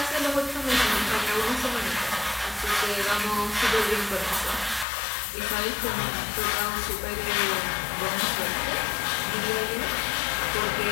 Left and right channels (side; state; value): right; drops out; at 4.9 s